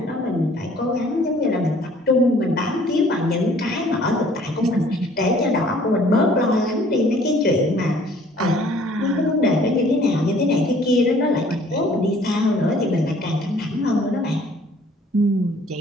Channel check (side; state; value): both; normal; correlation 0.56